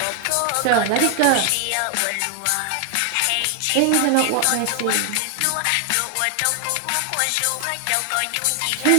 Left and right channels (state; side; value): different; both; correlation 0.00